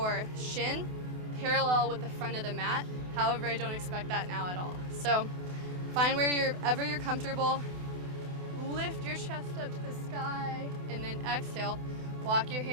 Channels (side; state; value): left; late; 28 ms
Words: shin parallel with the front of the mat. However, I don't expect that now at all. So find wherever you're comfortable. Lift your chest up to the sky and then exhale. Walk your